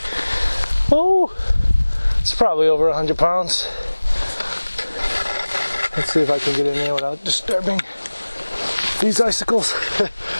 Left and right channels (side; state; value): both; inverted; correlation -1.00